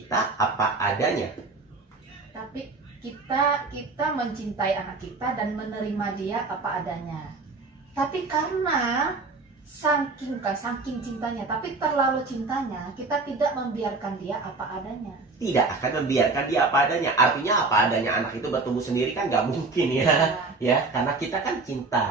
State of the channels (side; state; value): left; quieter; 3.8 dB